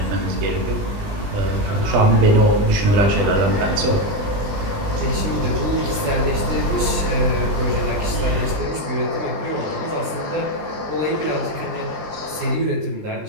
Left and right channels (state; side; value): late; left; 19 ms